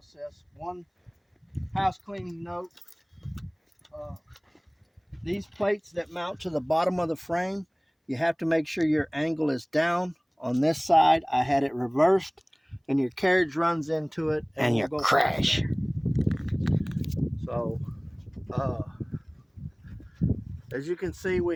One house cleaning note, these plates that mount to the bottom of the frame, you have to make sure your angle is down. On this side, I had it reversed and your carriage runs into it and you crash. So, as you can see,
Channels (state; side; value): identical; both; correlation 1.00